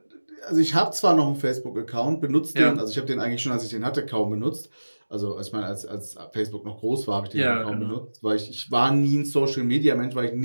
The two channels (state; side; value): inverted; both; correlation -1.00